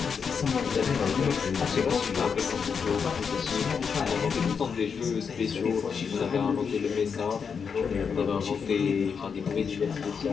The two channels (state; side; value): quieter; right; 6.2 dB